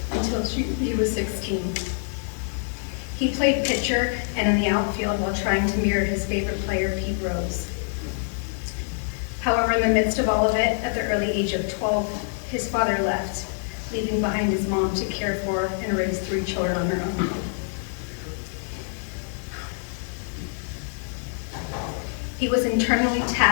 until he was 16. He played pitcher and in the outfield while trying to mirror his favorite player, Pete Rose. However, in the midst of all of it, at the early age of 12, his father left, leaving behind his mom to care for and raise 3 children on her own. He was internally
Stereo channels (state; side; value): silent; right; digital silence